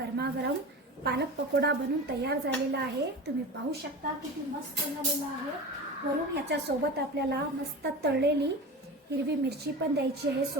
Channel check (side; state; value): both; normal; correlation 0.31